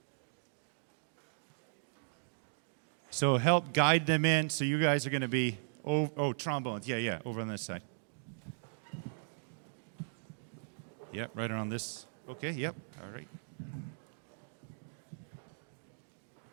So help guide them in. So you guys are going to be, trombones. Yeah, over on this side. Yep, right around this. Okay, yep, all right.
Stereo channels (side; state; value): left; silent; digital silence